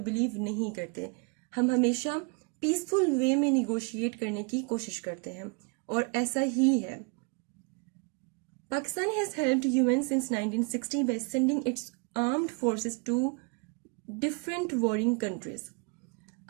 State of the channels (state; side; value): quieter; left; 32.9 dB